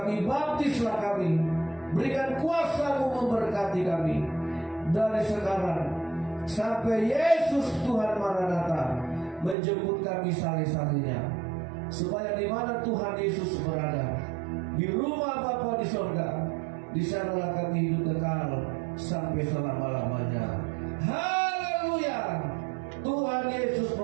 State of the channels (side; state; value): left; drops out; at 9.6 s